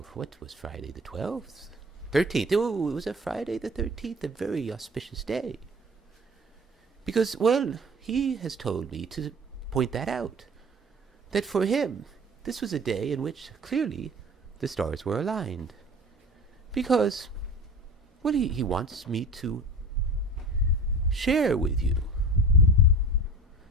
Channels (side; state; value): both; normal; correlation 0.38